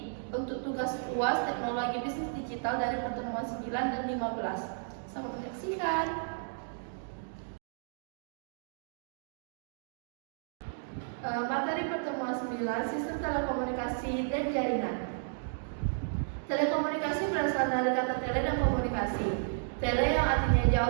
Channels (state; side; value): silent; left; digital silence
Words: untuk tugas UAS Teknologi Bisnis Digital dari pertemuan 9 dan 15. Selamat menyaksikan. Materi pertemuan 9, Sistem Telekomunikasi dan Jaringan. Telekomunikasi berasal dari kata tele dan komunikasi. Tele yang artinya